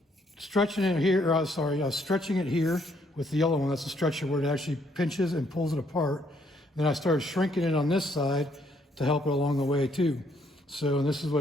stretching it here, I was stretching it here with the yellow one. That's the stretcher where it actually pinches and pulls it apart. Then I started shrinking it on this side to help it along the way too. So this is what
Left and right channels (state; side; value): normal; both; correlation 0.70